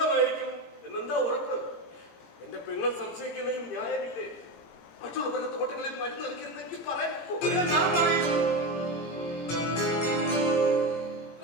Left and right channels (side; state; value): right; late; 18 ms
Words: എന്നെന്താ ഉറപ്പ്? എന്റെ പെങ്ങൾ സംശയിക്കുന്നതിൽ ന്യായമില്ലേ? മറ്റുള്ളവരുടെ തോട്ടങ്ങളിൽ മരുന്ന് നൽകരുതെങ്കിൽ പറയാൻ